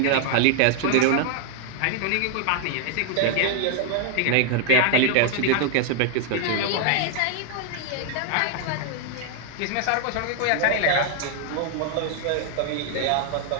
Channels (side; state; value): both; different; correlation 0.00